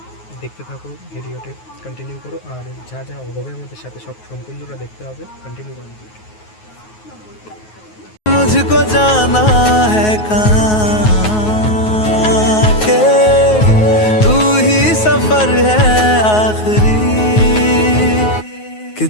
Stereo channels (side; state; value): right; late; 9.4 ms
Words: দেখতে থাকো, ভিডিওতে কন্টিনিউ করো, আর যা যা হবে আমাদের সাথে সব সম্পূর্ণটা দেখতে হবে। কন্টিনিউ করো ভিডিওটা। मुझको जाना है कहाँ के तू ही सफर है आखिरी कि